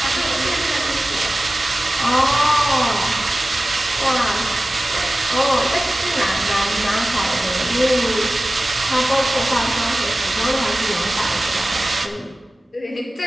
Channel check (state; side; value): normal; both; correlation 0.96